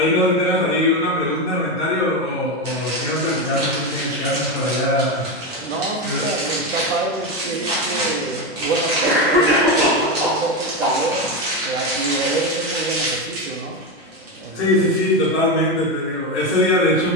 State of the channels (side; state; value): both; normal; correlation 0.14